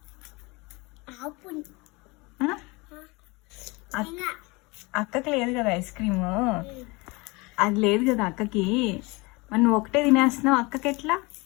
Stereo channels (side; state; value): right; quieter; 25.5 dB